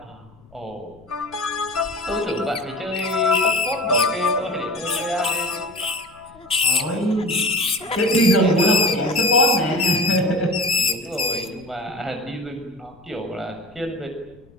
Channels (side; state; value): left; noise; rumble, 26 dB below the sound